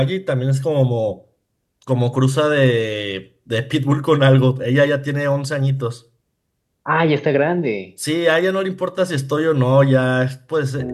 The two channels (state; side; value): identical; both; correlation 1.00